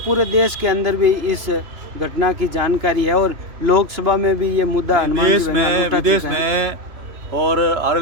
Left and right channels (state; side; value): late; left; 3.0 ms